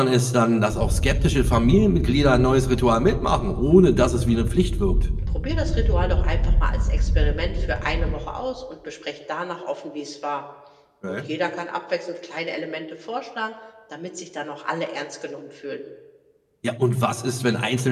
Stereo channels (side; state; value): both; identical; correlation 1.00